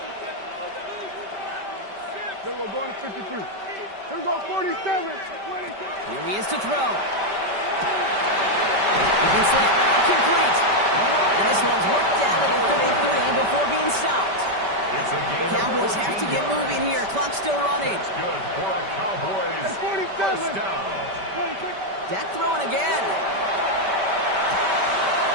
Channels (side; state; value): left; late; 5.1 ms